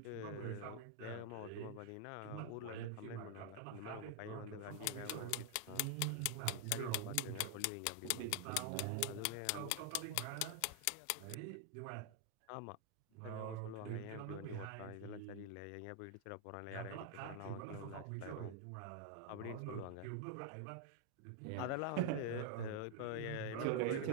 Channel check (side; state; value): both; different; correlation 0.00